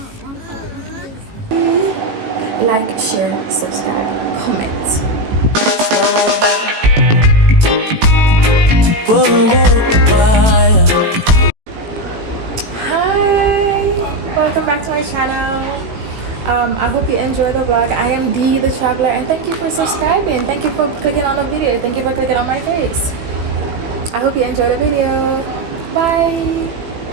Like, share, subscribe, comment. Hi, welcome back to my channel. I hope you enjoy the vlog. I am Dee the Traveler, and thank you for subscribing. Thank you for clicking on the video. Thank you for clicking on my face. I hope you enjoy the video. Bye.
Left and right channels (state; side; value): late; left; 18 ms